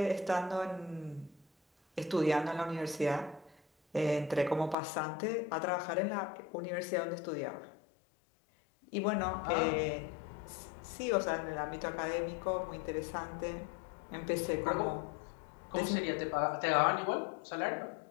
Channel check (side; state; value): right; drops out; at 4.8 s